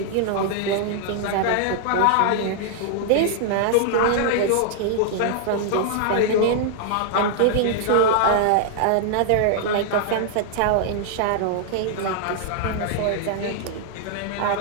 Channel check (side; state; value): both; different; correlation -0.01